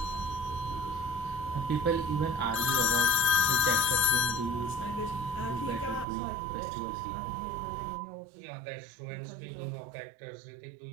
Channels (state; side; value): drops out; left; at 6.1 s